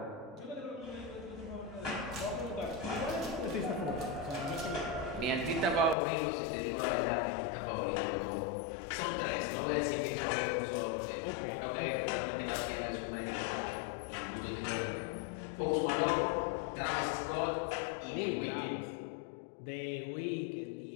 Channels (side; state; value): right; drops out; at 6.0 s